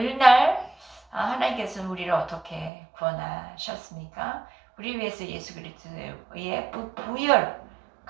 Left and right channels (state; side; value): drops out; left; at 2.7 s